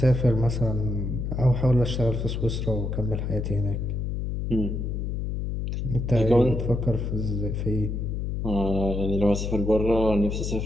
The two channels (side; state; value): left; noise; hum, 2 dB below the sound